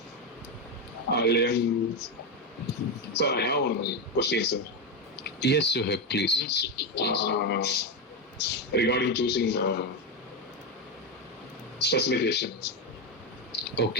Sir, I have one question, sir. Yes, Suhaib, please. Regarding choosing specification.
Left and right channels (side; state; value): both; normal; correlation 0.11